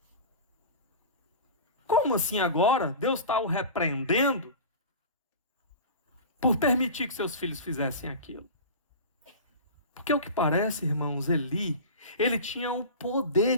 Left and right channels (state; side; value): inverted; both; correlation -0.32